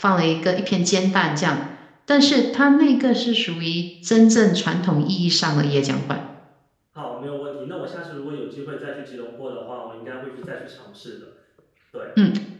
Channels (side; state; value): both; identical; correlation 1.00